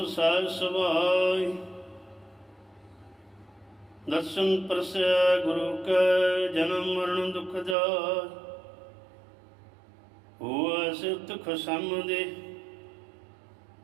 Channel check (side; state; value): left; drops out; at 7.8 s